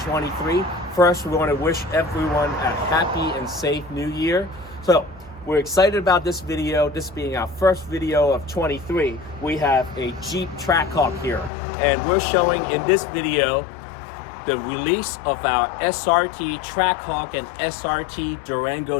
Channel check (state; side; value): drops out; right; at 11.5 s